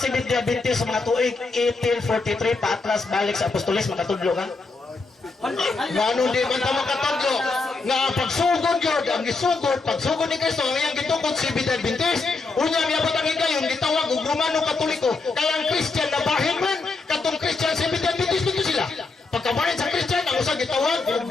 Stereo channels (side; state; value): right; quieter; 3.8 dB